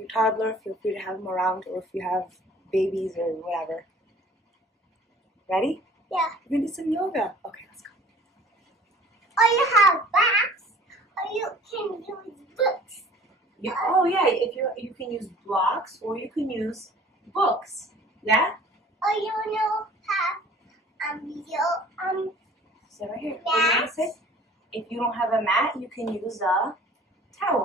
toddler, feel free to have them around, or if you have babies or whatever. Ready? Yeah. We're going to do some yoga. Okay, let's go. Or you have blocks, or you can use books. Yeah. Oh, yeah. If you can use blocks, or you can use books. Yeah? Or you have So right here. What do you want to say? If you don't have a mat, you can use a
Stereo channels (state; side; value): normal; both; correlation 0.49